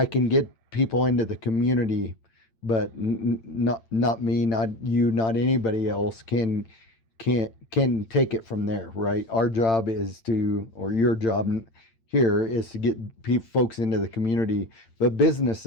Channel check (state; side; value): late; right; 8.9 ms